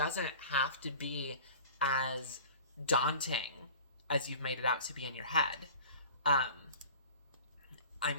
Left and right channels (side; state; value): both; inverted; correlation -0.40